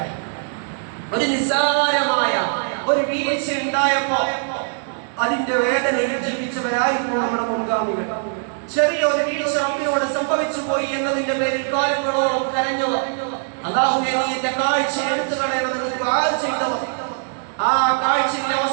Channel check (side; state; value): left; silent; 60 dB below the other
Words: നിസ്സാരമായ ഒരു വീഴ്ച ഉണ്ടായപ്പോ അതിന്റെ വേദനയിൽ ജീവിച്ചവരായിരുന്നു നമ്മുടെ മുൻഗാമികൾ. ചെറിയ ഒരു വീഴ്ച റബ്ബിനോട് സംഭവിച്ചു പോയി എന്നതിന്റെ പേരിൽ കാലങ്ങളോളം കരഞ്ഞവർ, അല്ലാഹുവേ നീ എന്റെ കാഴ്ച എടുത്തു കളയണമെന്ന് ദുആ ചെയ്തവർ, ആ കാഴ്ചയിലെ